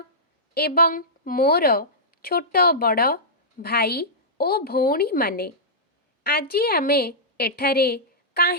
एवं मोर छोट बड़ भाई ओ भौणी माने, आजी आमे एठारे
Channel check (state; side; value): normal; both; correlation -0.14